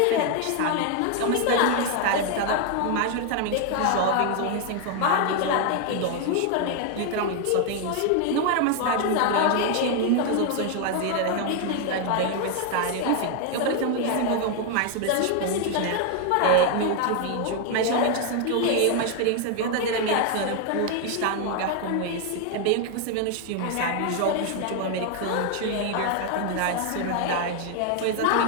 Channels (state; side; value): different; both; correlation 0.00